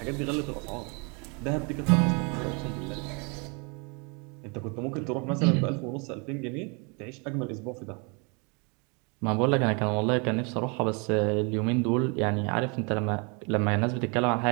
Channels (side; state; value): left; quieter; 32.8 dB